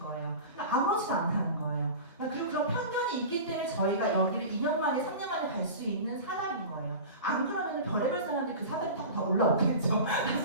거예요. 그러니까 아무렇지도 않다는 거예요. 그리고 그런 편견이 있기 때문에 저희가 여기를 2년 만에 3년 만에 갈 수 있는 사람인 거예요. 안 그러면 별의별 사람들이 그 사다리 타고 다 올라오겠죠.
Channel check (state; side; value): inverted; both; correlation -0.33